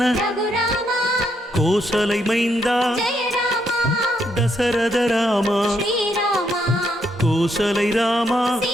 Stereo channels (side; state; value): both; normal; correlation 0.76